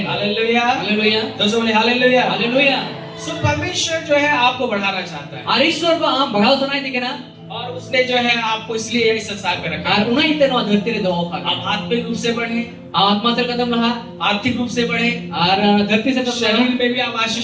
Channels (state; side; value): identical; both; correlation 1.00